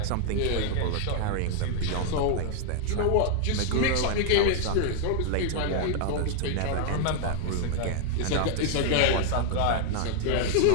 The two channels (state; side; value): different; both; correlation 0.00